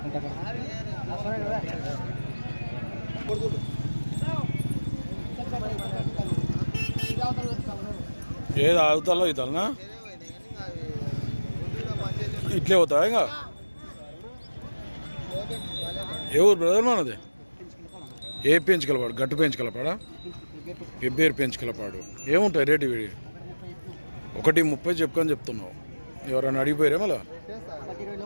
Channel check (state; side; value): inverted; both; correlation -1.00